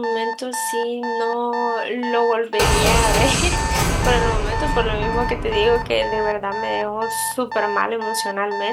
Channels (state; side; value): identical; both; correlation 1.00